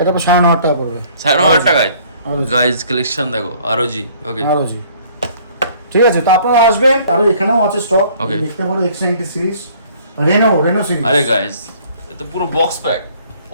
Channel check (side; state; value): both; inverted; correlation -0.57